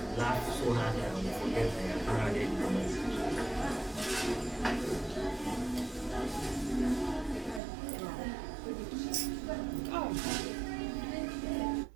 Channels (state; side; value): drops out; left; at 7.6 s